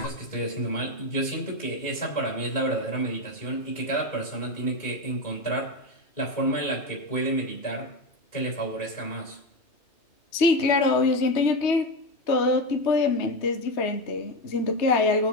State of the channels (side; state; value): right; late; 3.2 ms